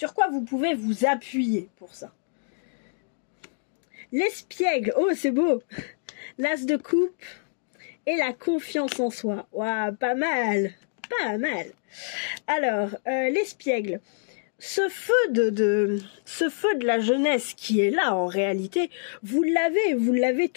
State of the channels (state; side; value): silent; right; digital silence